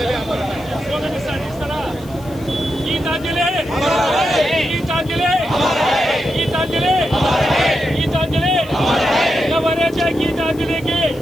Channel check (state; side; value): noise; left; hiss, 23 dB below the sound